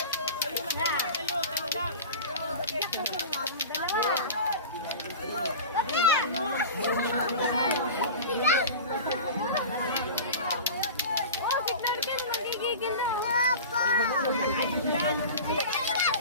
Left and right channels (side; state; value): both; inverted; correlation -0.33